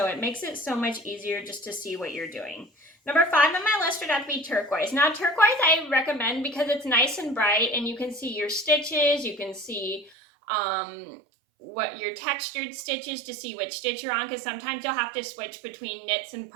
it makes it so much easier just to see what you're doing. Number five on my list would have to be turquoise. Now, turquoise I recommend because it's nice and bright, and you can see your stitches, you can see what your textured stitches to see which stitch you're on, because sometimes you'll have to switch between knits and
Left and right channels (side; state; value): left; drops out; at 10.1 s